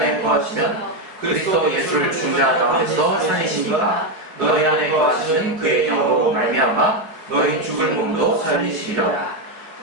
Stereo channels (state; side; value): late; left; 4.7 ms